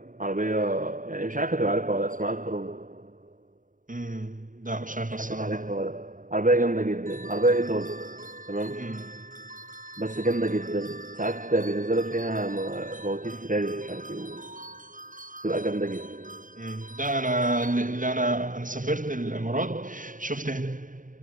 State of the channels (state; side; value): late; left; 0.38 ms